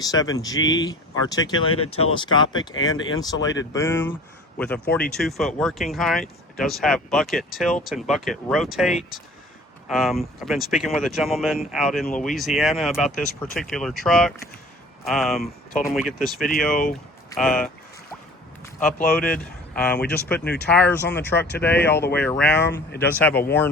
articulated, telescopic, and insulated boom with a 42-foot working height. It does have bucket tilt and bucket rotate. I've been speaking with a gentleman out in Louisiana about this particular truck. Told him we get this video uploaded. We just put new tires on the truck today all the way around. It does have a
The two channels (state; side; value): normal; both; correlation 0.46